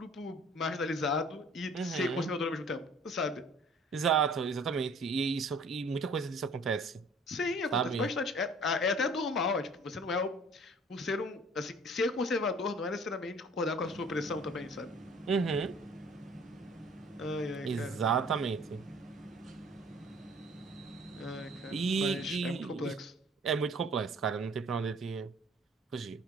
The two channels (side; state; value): both; normal; correlation 0.52